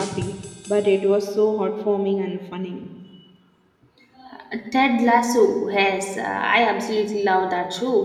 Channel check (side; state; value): both; identical; correlation 1.00